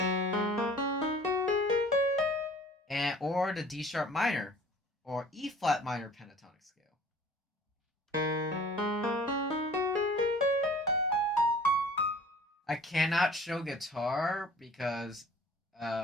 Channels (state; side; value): normal; both; correlation 0.48